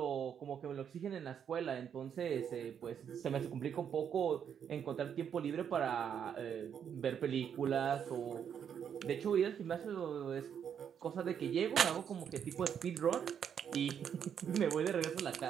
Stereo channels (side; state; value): left; quieter; 8.2 dB